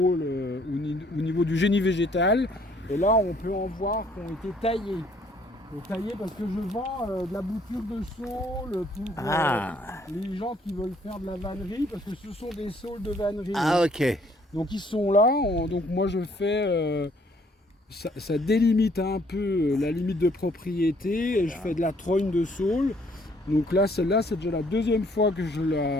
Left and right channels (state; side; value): normal; both; correlation 0.63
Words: au niveau du génie végétal. Et là, on peut en voir qui ont été taillées. Taillées parce que je vends de la bouture de saule pour les gens qui veulent faire de la vannerie, parce que ce sont des saules de vannerie. Ah, ok. Donc ils sont là, donc moi je fais, ça délimite un peu la limite de propriété, et je fais de la trogne de saule. Donc là, celle-là, c'est déjà la deuxième fois que